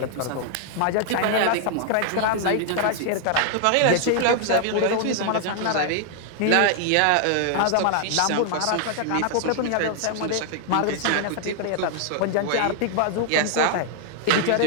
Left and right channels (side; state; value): both; different; correlation 0.00